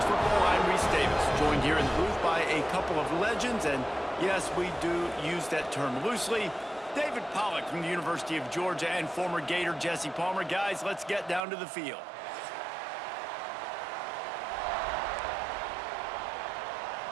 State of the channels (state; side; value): drops out; left; at 11.4 s